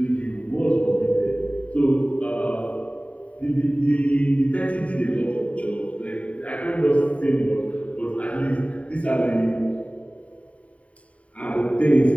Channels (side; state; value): right; late; 0.066 ms